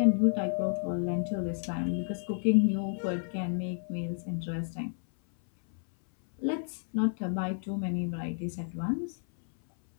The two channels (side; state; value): right; silent; 57 dB below the other